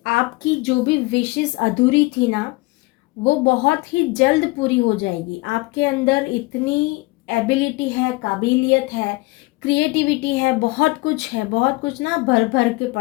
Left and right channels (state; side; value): quieter; right; 23.4 dB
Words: आपकी जो भी विशेस अधूरी थी ना वो बहुत ही जल्द पूरी हो जाएगी। आपके अंदर इतनी एबिलिटी है, काबिलियत है, क्रिएटिविटी है, बहुत कुछ है, बहुत कुछ ना भर भर के